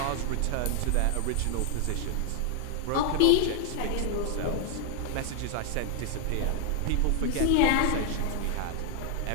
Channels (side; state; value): both; different; correlation 0.00